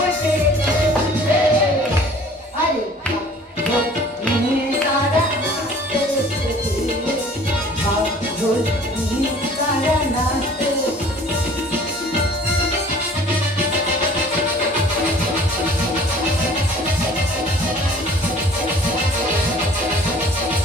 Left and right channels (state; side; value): normal; both; correlation 0.50